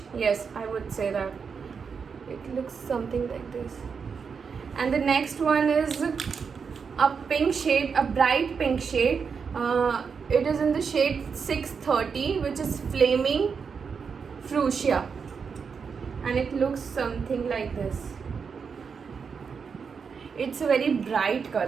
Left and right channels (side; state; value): left; quieter; 5.9 dB